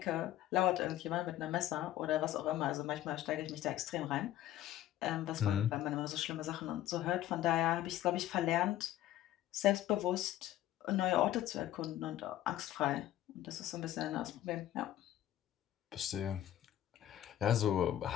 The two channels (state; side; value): quieter; right; 12.9 dB